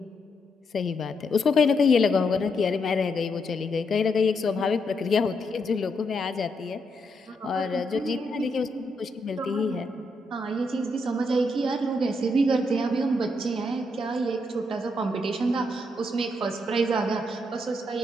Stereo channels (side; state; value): both; normal; correlation 0.79